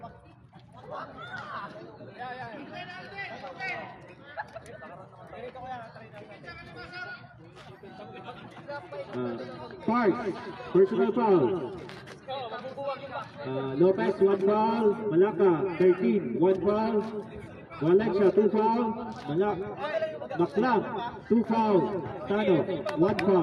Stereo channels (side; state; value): both; identical; correlation 1.00